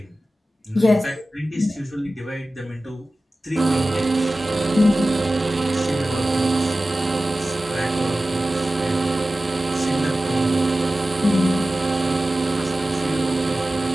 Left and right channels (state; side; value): normal; both; correlation 0.95